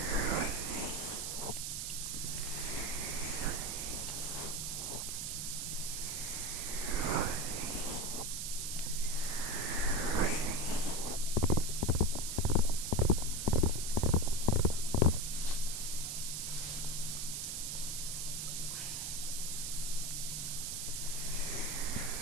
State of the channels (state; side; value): noise; right; hiss, 3 dB below the sound